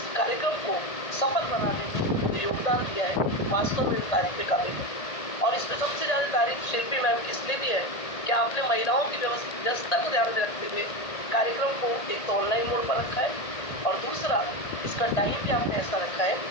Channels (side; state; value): right; late; 1.8 ms